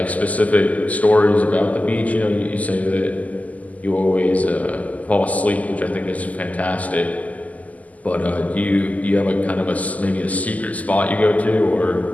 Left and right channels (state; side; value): late; right; 0.075 ms